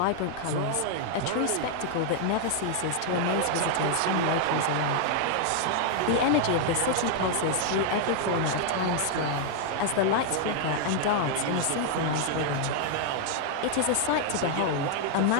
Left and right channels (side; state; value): both; different; correlation 0.00